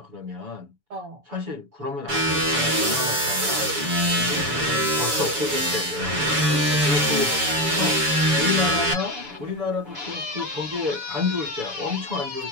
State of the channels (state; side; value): late; left; 6.9 ms